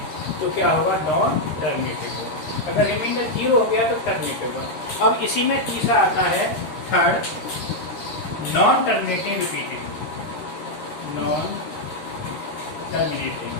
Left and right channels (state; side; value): late; right; 13 ms